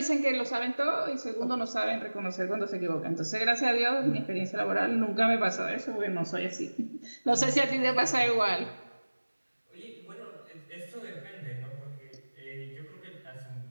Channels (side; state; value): both; inverted; correlation -1.00